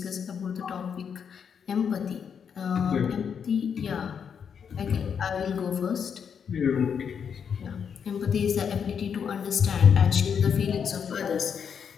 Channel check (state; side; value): quieter; right; 7.2 dB